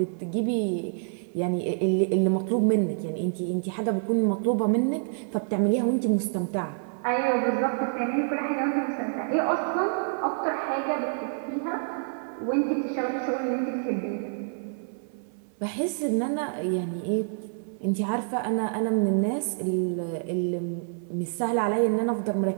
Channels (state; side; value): silent; left; 56 dB below the other